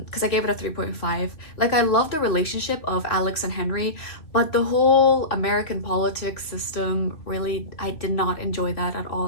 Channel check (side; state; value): right; late; 3.0 ms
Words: I gave it a 3.5. I love the relationship of Alex and Henry, but the whole American politics system, really, I did not enjoy that at all.